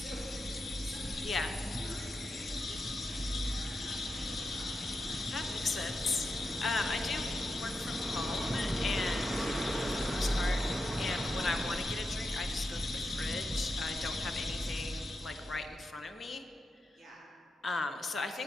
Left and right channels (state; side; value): normal; both; correlation 0.88